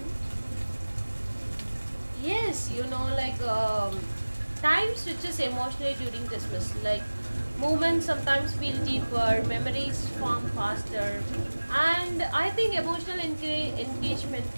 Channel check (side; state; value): both; inverted; correlation -1.00